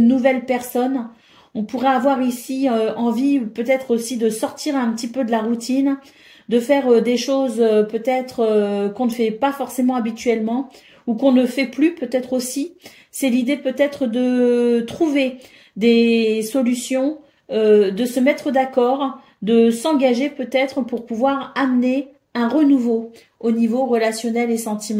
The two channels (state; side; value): identical; both; correlation 1.00